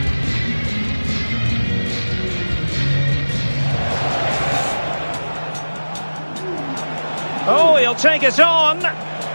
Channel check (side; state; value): both; inverted; correlation -1.00